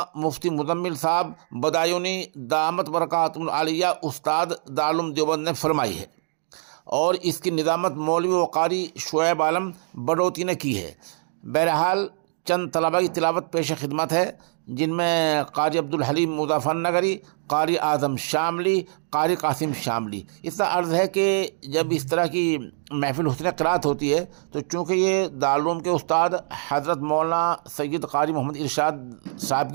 मुफ्ती मुज़म्मिल साहब बदायूनी दामत बरकातुहुल आलिया उस्ताद दारुल उलूम देवबंद ने फरमाई है और इसकी निज़ामत मौलवी व कारी शुएब आलम बडोती ने की है। बहरहाल चंद तलबा की तिलावत पेश खिदमत है, जिनमें कारी अब्दुल हलीम मुज़फ़्फ़रनगरी, कारी आज़म शामली, कारी कासिम शामली। इसका अर्ज़ है कि जब इस तरह की महफिल हुस्न क़िराअत होती है तो चूँकि ये दारुल उलूम के उस्ताद हज़रत मौलाना सैयद कारी मोहम्मद इरशाद साहब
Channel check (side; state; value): left; silent; digital silence